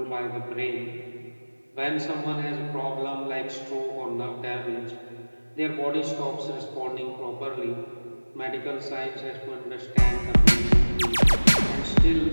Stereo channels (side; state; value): both; inverted; correlation -1.00